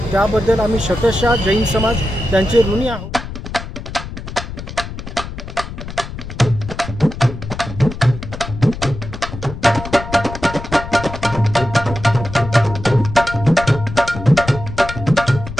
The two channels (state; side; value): noise; left; rumble, 10 dB below the sound